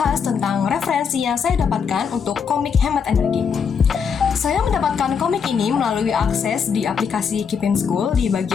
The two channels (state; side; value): quieter; right; 6.5 dB